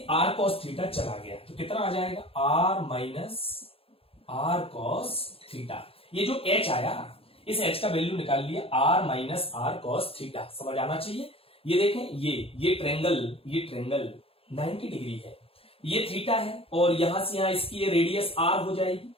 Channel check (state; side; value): late; right; 0.27 ms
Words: r cos थीटा चला गया, तो कितना आ जाएगा, r minus r cos theta. ये जो h आया, इस h का वैल्यू निकाल लिया, r minus r cos theta, समझ आना चाहिए। ये देखें, ये ट्रेंगल 90 डिग्री है, ये थीटा है, और यहां से यहां इसकी ये रेडियस r हो जाएगी,